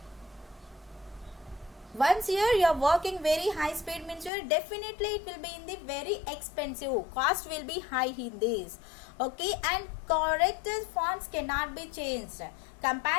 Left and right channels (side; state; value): right; drops out; at 4.3 s